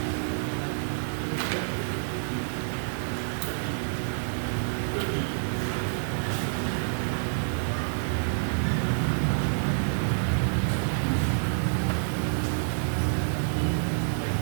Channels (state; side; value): silent; left; digital silence